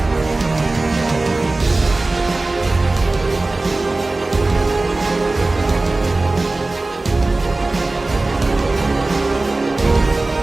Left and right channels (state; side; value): quieter; left; 3.1 dB